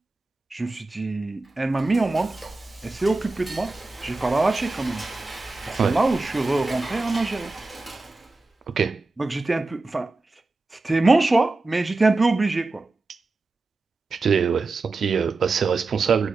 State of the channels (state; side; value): quieter; left; 3.4 dB